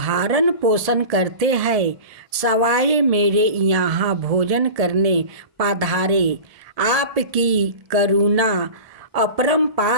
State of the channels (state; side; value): late; left; 1.7 ms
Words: पोषण करते हैं, सवाए मेरे यहाँ भोजन करने पधारे। आपकी करुणा